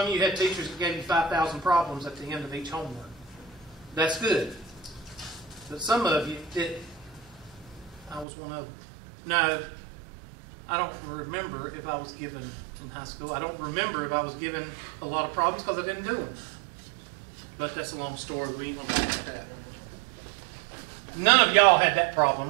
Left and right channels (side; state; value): left; drops out; at 8.2 s